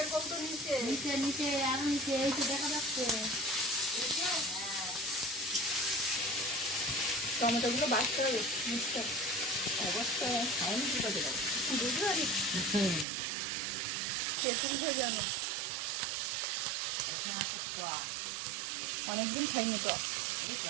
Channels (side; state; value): left; drops out; at 13.1 s